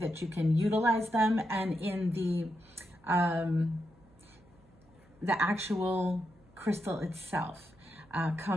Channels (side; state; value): right; noise; hum, 29 dB below the sound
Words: you can utilize them, and in the actual crystal itself.